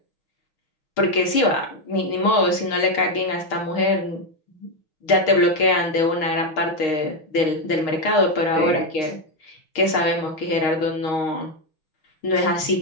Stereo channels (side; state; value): right; late; 6.4 ms